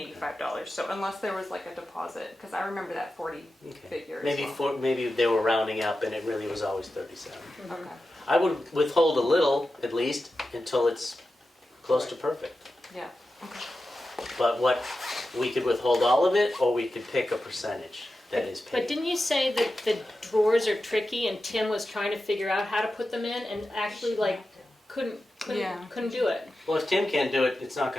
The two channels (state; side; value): normal; both; correlation 0.92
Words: So unless there was like a deposit, because I remember that 40 figure. as Maybe well. maybe they were rounding up and it really was always 37. Okay. I would withhold a little at least until it's close to perfect. Yeah. Okay. But we could withhold all of it, or we could pick a percentage that is But paid. didn't you say that the drawers are tricky and Tim was trying to figure out how to put them in and actually like couldn't Yeah. do it? Well, if Tim can't do it, it's not